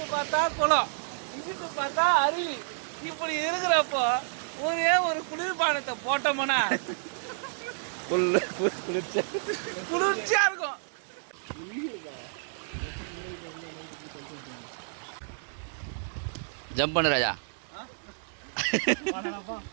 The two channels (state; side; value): silent; left; digital silence